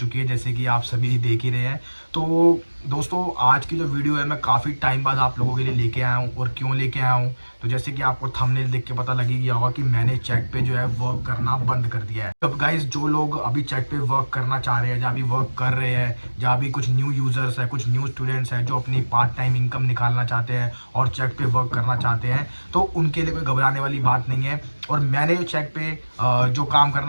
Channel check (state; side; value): inverted; both; correlation -1.00